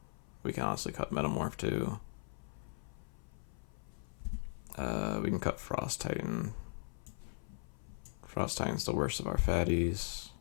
We can honestly cut Metamorph too. We can cut Frost Titan. Frost Titan's the worst of our fatties.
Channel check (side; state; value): right; silent; 52 dB below the other